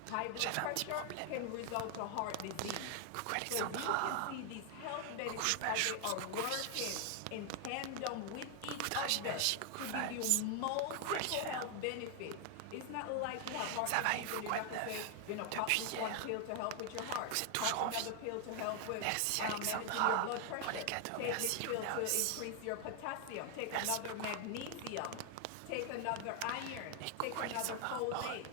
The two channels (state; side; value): different; both; correlation 0.00